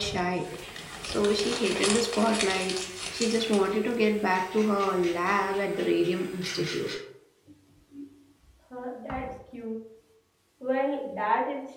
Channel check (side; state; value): both; identical; correlation 1.00